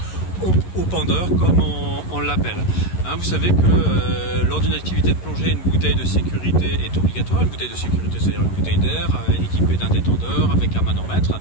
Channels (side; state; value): right; late; 11 ms